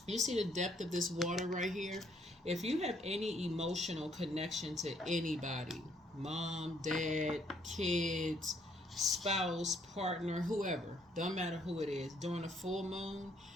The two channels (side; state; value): both; normal; correlation 0.67